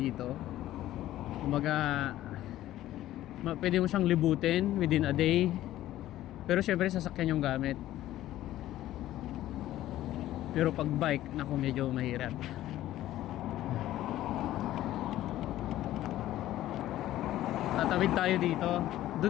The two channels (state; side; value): quieter; right; 14.1 dB